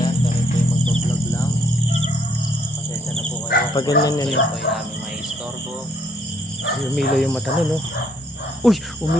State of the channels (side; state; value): both; normal; correlation 0.67